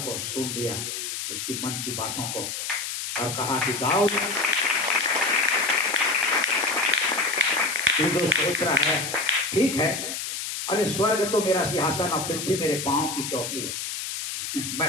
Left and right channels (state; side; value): noise; left; hiss, 5 dB below the sound